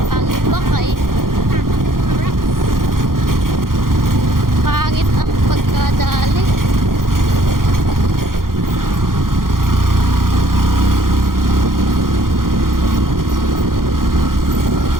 Pangit ba kay? Pangit ang pagkadali.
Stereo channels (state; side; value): late; left; 0.91 ms